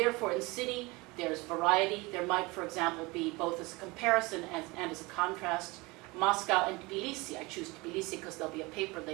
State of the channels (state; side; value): quieter; left; 24.1 dB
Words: in city, there's variety. There might, for example, be both as a comparison and as a contrast, Moscow and Tbilisi. I choose Tbilisi because there'll be a paper